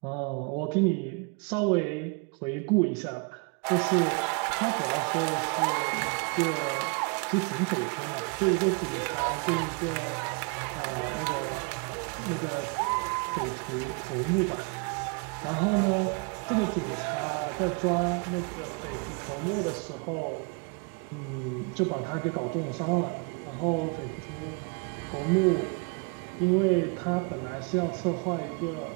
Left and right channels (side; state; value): left; quieter; 33.5 dB